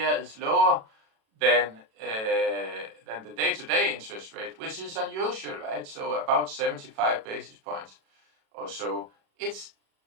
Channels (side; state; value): left; late; 37 ms